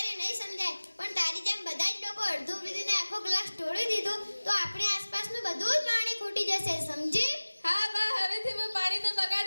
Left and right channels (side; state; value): both; inverted; correlation -1.00